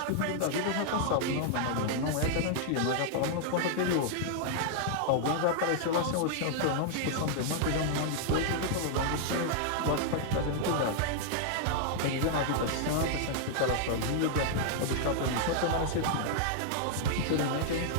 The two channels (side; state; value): both; different; correlation -0.01